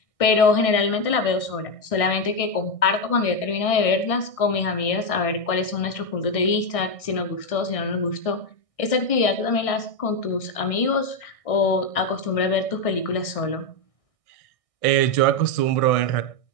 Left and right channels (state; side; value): late; right; 1.6 ms